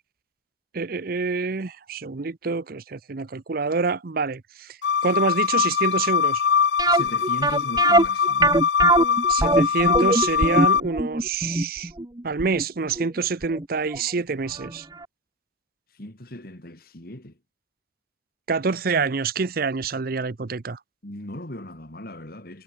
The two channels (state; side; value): normal; both; correlation 0.09